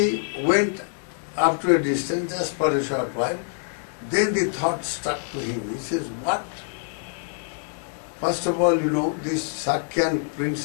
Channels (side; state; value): right; silent; 62 dB below the other